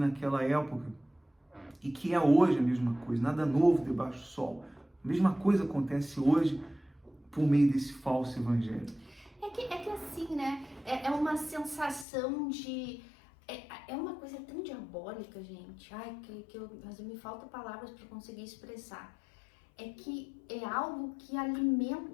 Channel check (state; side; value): drops out; right; at 12.1 s